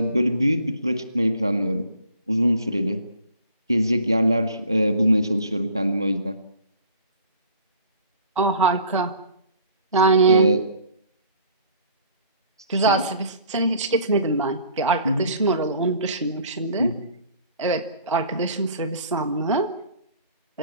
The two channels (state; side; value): inverted; both; correlation -0.51